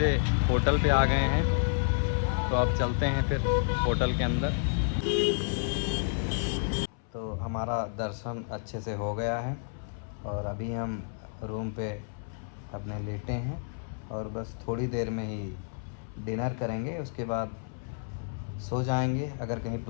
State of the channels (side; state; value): right; silent; 58 dB below the other